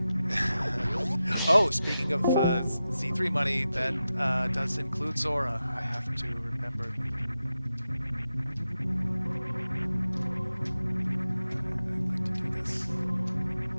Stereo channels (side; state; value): both; inverted; correlation -0.91